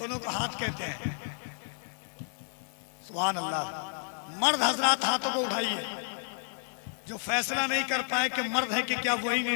को हाथ कहते हैं। सुभान अल्लाह। मर्द हजरात हाथों को उठाइए। जो फैसला नहीं कर पाए कि मर्द है कि क्या, वही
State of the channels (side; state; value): right; silent; 57 dB below the other